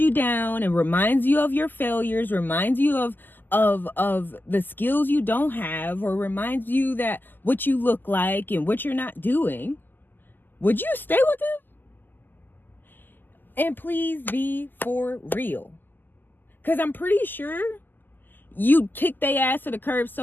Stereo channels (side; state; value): right; late; 0.089 ms